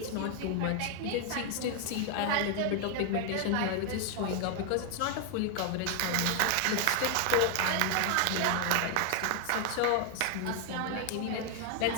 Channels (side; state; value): both; different; correlation 0.01